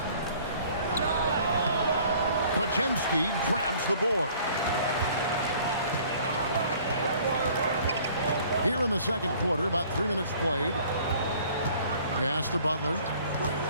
Podziemski grabs the board. Here in the second quarter, about 3 minutes played. Pass to Butler.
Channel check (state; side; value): inverted; both; correlation -0.54